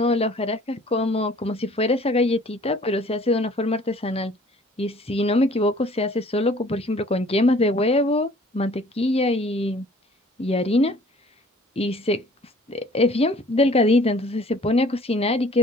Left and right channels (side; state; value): both; normal; correlation 0.53